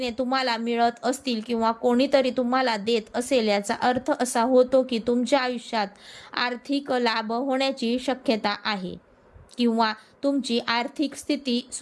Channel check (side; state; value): both; identical; correlation 1.00